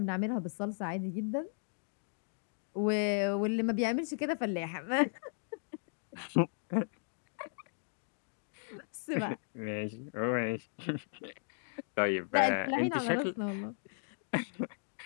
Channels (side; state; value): right; silent; digital silence